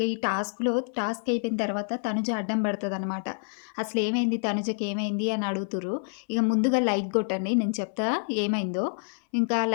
ఈ టాస్క్ అయిపోయిన తర్వాత తనుజ అడ్డం పడతదనమాట. అసలేమైంది తనుజకి ఏమైంది అని అడుగుతుర్రు. ఇక ముందుగా లైక్ కొట్టండి, నేను చెప్తా ఏమైందో. ఇంకా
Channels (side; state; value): right; silent; 56 dB below the other